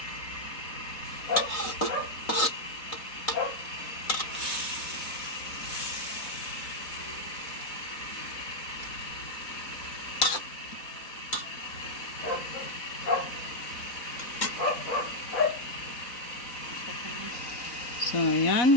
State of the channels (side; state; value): right; late; 4.1 ms